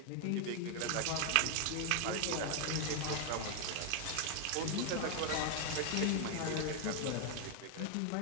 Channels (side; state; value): both; different; correlation 0.00